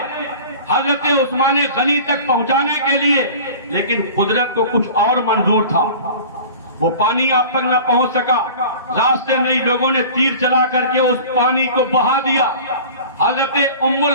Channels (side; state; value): both; inverted; correlation -0.40